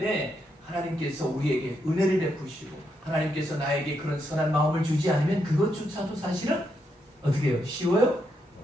하나님께서 우리에게 은혜를 베푸시고 하나님께서 나에게 그런 선한 마음을 주지 않으면 그것조차도 사실은 어떻게 해요? 쉬워요?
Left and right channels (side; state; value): both; normal; correlation 0.80